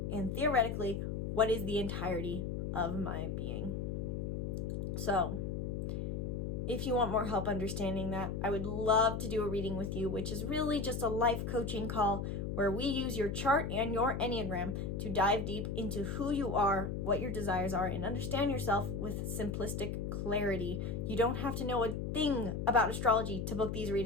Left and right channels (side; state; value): left; noise; hum, 3 dB below the sound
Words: and theoretically, what is the entirety of my being? So, if you want more help understanding that, I would love to do a reading with you, which is really just a life coaching call where we use your chart and your Enneagram to dive deep into who you are, what your desires are, and understand yourself with simplistic clarity. You don't have to know a thing about astrology to book these